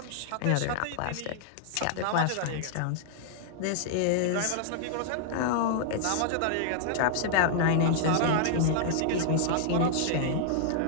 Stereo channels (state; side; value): different; both; correlation -0.01